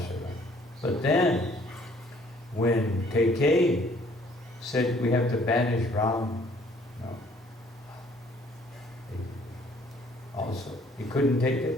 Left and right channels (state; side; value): normal; both; correlation 0.60